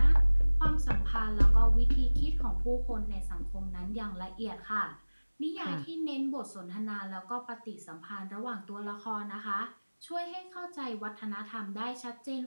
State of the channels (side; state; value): both; inverted; correlation -1.00